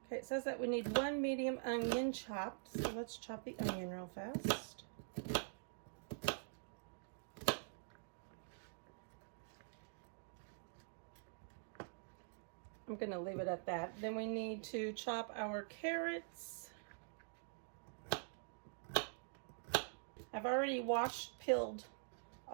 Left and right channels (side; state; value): left; silent; digital silence